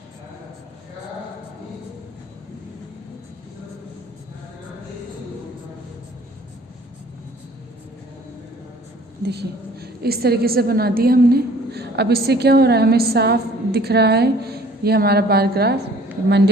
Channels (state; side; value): normal; both; correlation 0.53